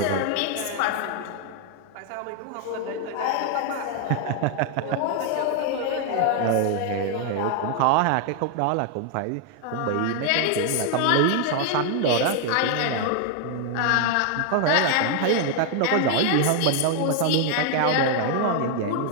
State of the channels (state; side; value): different; both; correlation 0.00